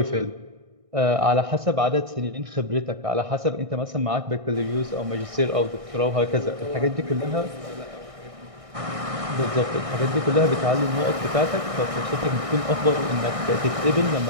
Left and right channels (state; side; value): late; left; 1.6 ms